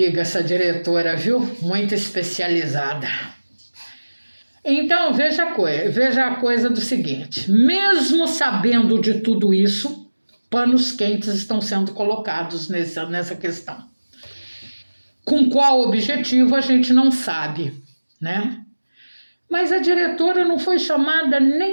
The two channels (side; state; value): both; inverted; correlation -1.00